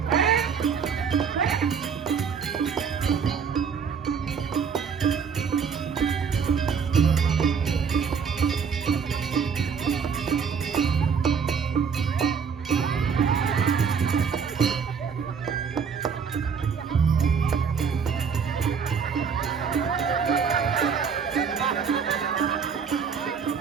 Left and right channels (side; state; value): left; quieter; 6.4 dB